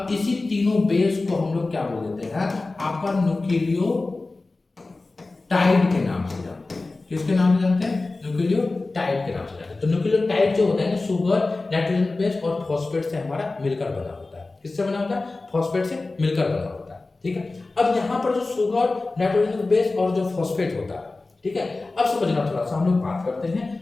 इसी तीनों बेस को हम लोग क्या बोल देते हैं, आपका न्यूक्लियोटाइड के नाम से जानते हैं। किसके नाम से जानते हैं, न्यूक्लियोटाइड के नाम से जानते हैं। तो न्यूक्लियोटाइड जो होता है ना, शुगर, नाइट्रोजन बेस और फॉस्फेट से हमारा मिलकर बना होता है। किससे बना होता है, फॉस्फेट से मिलकर बना होता है, ठीक है। अब यहाँ पर जो शुगर, नाइट्रोजन बेस और जो फॉस्फेट होता है, ठीक है, अब समझना थोड़ा सा हम लोग बात करते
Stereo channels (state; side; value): quieter; right; 3.4 dB